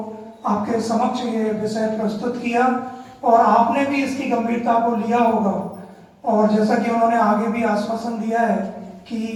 आपके समक्ष ये विषय प्रस्तुत किया और आपने भी इसकी गंभीरता को लिया होगा। और जैसा कि उन्होंने आगे भी आश्वासन दिया है कि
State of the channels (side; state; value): both; identical; correlation 1.00